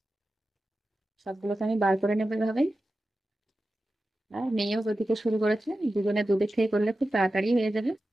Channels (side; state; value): both; normal; correlation 0.93